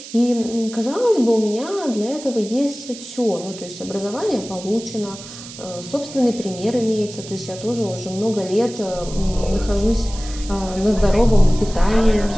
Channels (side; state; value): right; noise; hiss, 14 dB below the sound